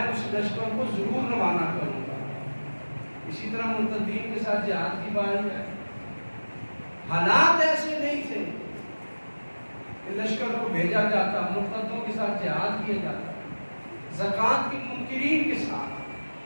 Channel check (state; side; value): inverted; both; correlation -1.00